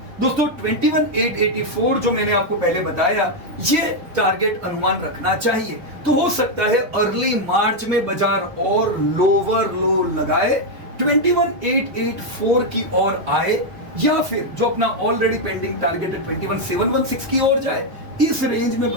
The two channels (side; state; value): left; late; 4.0 ms